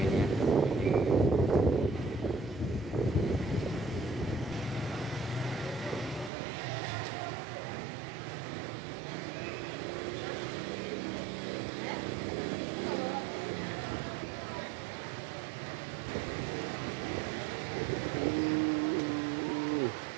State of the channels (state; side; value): drops out; left; at 6.3 s